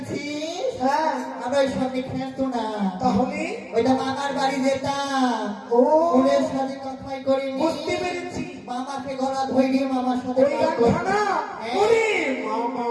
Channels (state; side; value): identical; both; correlation 1.00